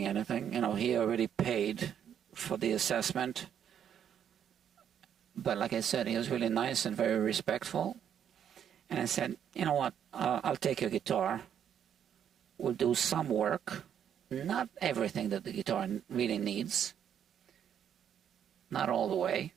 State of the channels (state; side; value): quieter; left; 9.0 dB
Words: anything. You know, he already paid for the assessment. But like I said, he was really nice and very respectful. And I said, you know what, I'll take your guitar. We'll do some work. Not everything that the guitar really needs. Not all the way